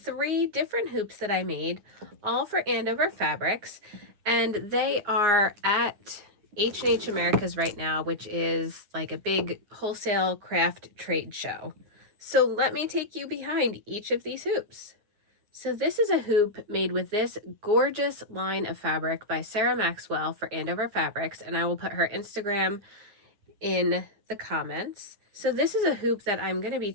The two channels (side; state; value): left; late; 9.6 ms